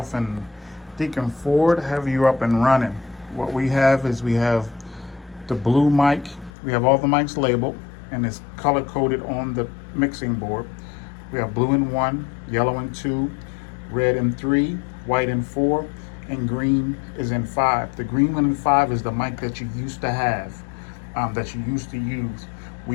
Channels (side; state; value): right; drops out; at 6.5 s